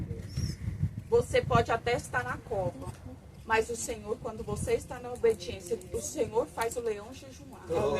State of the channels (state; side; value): identical; both; correlation 1.00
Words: Você pode até estar na cova, mas o Senhor, quando você está na obediência, o Senhor faz o leão jejuar.